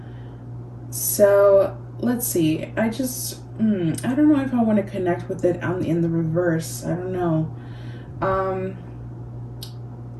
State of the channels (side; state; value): both; identical; correlation 1.00